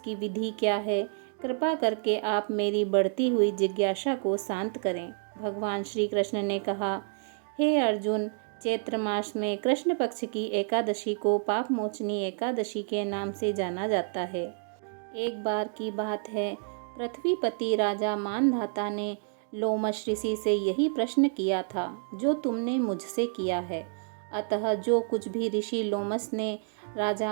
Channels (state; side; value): silent; left; digital silence